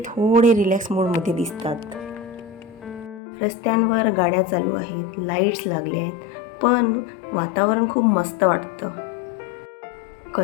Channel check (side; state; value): right; drops out; at 3.2 s